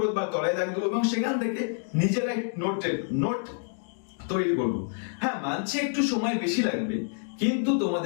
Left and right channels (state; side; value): silent; right; 60 dB below the other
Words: বা তলায় দাগ দেবো এবং সেখান থেকে নিজেরাই নোট তৈরি করব। হ্যাঁ, মানছে একটু সময় বেশি লাগবে, কিন্তু